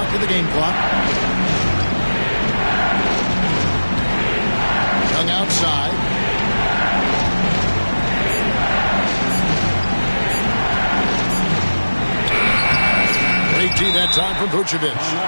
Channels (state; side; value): inverted; both; correlation -1.00